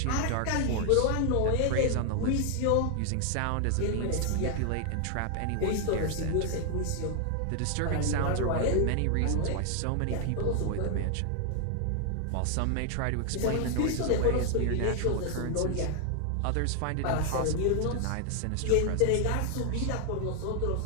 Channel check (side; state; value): both; different; correlation 0.00